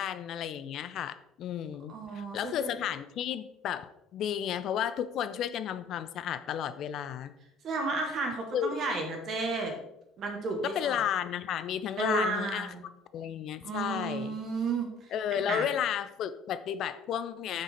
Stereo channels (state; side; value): quieter; right; 3.8 dB